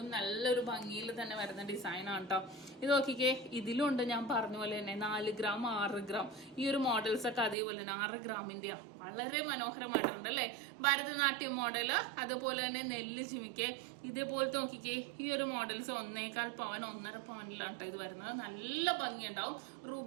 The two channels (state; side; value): drops out; left; at 7.6 s